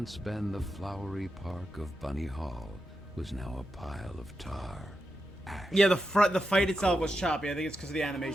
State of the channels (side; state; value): both; normal; correlation 0.87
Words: been the flowery park of Bunny Hall was now a pile of tar. Ash. Yeah, the fight itself was choppy. I think it's because of the